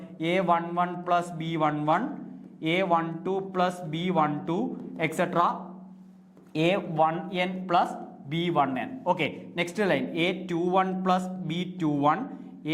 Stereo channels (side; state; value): both; identical; correlation 1.00